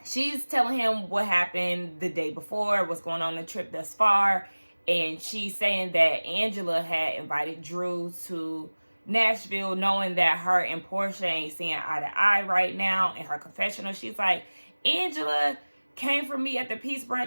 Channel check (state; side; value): inverted; both; correlation -1.00